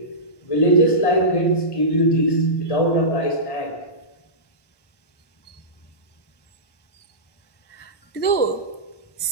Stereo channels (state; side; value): late; right; 1.1 ms